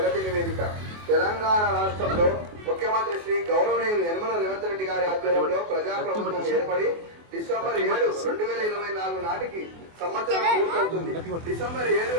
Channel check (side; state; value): left; late; 24 ms